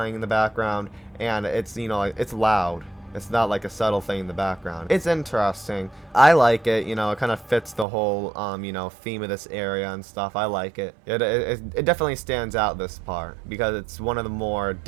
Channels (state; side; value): drops out; left; at 7.9 s